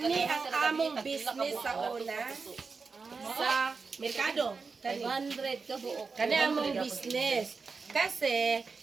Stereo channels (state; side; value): quieter; left; 4.7 dB